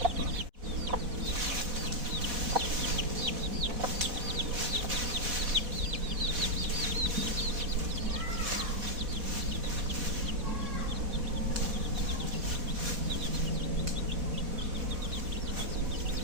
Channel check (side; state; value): left; late; 4.1 ms